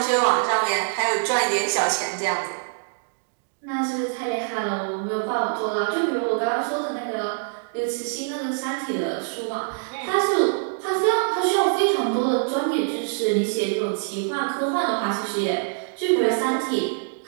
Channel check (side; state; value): left; silent; digital silence